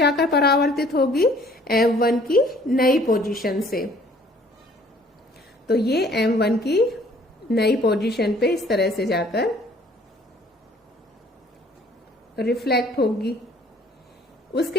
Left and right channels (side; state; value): both; normal; correlation 0.57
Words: परावर्तित होगी? M1 की नई पोजीशन से। तो ये M1 की नई पोजीशन पे इस तरह से जाकर रिफ्लेक्ट होगी।